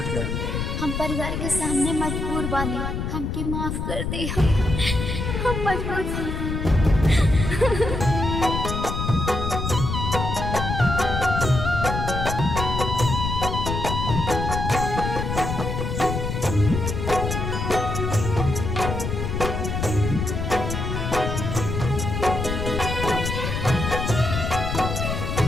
गई? हम परिवार के सामने मजबूर बानी, हमके माफ कर दे। हम मजबूर बानी।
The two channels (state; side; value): noise; left; rumble, 3 dB below the sound